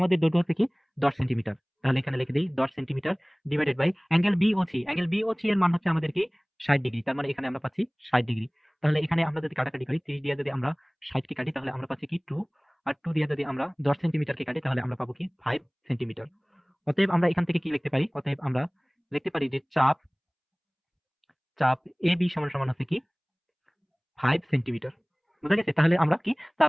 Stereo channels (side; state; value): both; identical; correlation 1.00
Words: দৈর্ঘ্য হচ্ছে কি 10 সেন্টিমিটার। তাহলে এখানে লিখে দিই 10 centimetre divided by angle B O C, angle B O C এর মান হচ্ছে আমাদের কি 60 ডিগ্রি। তার মানে এখানে আমরা পাচ্ছি 60 ডিগ্রি। তাহলে এখানে আমরা যদি কাটাকাটি করি, 30 দিয়ে যদি আমরা 60 কে কাটি তাহলে আমরা পাচ্ছি কি 2, আর 2 দিয়ে যদি আমরা 10 সেন্টিমিটারকে কাটি তাহলে আমরা পাবো কি 5 সেন্টিমিটার। অতএব আমরা এখান থেকে কি লিখতে পারি, অতএব আমরা লিখতে পারি যে চাপ চাপ এ বি সমান সমান হচ্ছে কি 5 সেন্টিমিটার। বুঝা গেছে? তাহলে আমরা কি